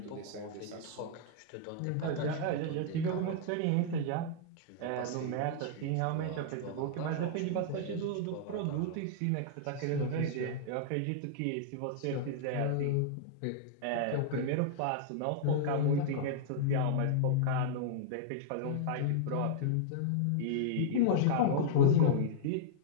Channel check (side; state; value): both; different; correlation -0.02